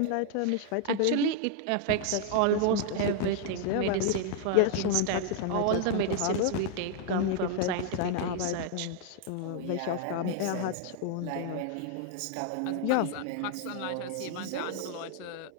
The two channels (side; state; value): both; different; correlation 0.00